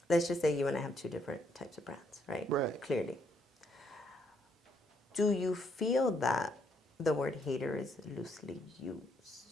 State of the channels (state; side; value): normal; both; correlation 0.72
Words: let's just say you and I have two different types of brands, right? Right. Clearly. Do you feel that the word hater is loosely